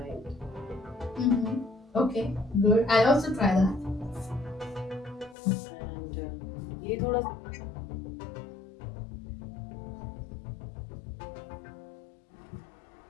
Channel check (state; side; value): drops out; right; at 5.4 s